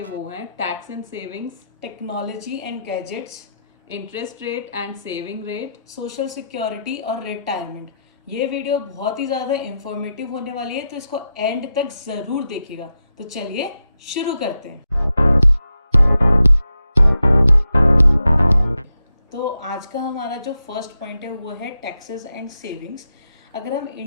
वो हैं tax and savings, technology and gadgets, interest rate and saving rate, social security और रिटायरमेंट। ये वीडियो बहुत ही ज़्यादा इंफॉर्मेटिव होने वाली है, तो इसको एंड तक ज़रूर देखिएगा। तो चलिए शुरू करते हैं। तो आज का हमारा जो फर्स्ट पॉइंट है वो है टैक्सेस एंड सेविंग्स। अगर हम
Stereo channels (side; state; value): both; inverted; correlation -0.86